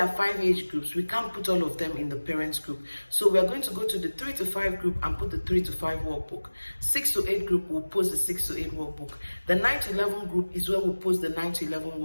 are 5 age groups, we can't put all of them in the parents group. So we are going to go to the 3 to 5 group and put the 3 to 5 workbook. 6 to 8 group will post the 6 to 8 workbook. The 9 to 11 group is where we'll post the 9 to 11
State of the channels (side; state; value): both; inverted; correlation -1.00